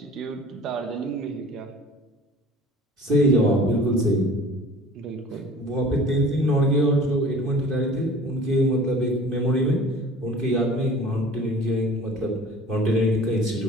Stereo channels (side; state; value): both; normal; correlation 0.45